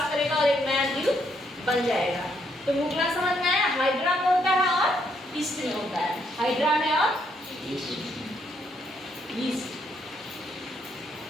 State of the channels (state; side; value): normal; both; correlation 0.73